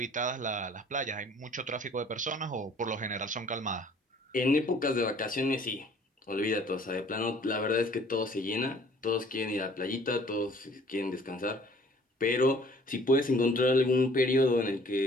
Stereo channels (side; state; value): both; normal; correlation 0.55